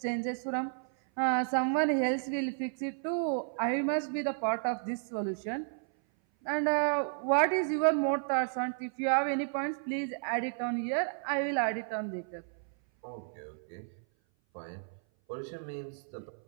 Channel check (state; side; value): silent; left; 56 dB below the other